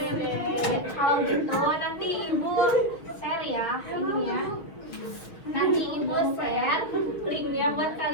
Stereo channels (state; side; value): late; right; 6.3 ms